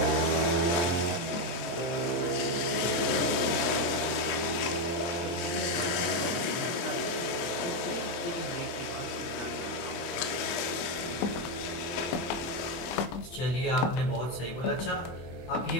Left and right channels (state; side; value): late; right; 24 ms